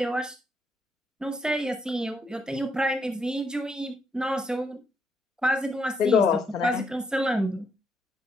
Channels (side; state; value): both; normal; correlation 0.76